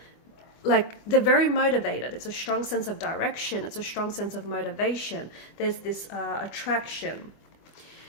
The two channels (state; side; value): late; right; 24 ms